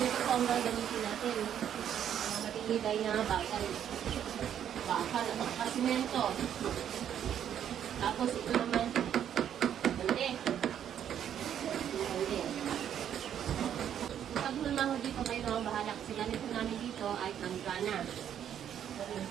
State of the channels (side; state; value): left; quieter; 9.6 dB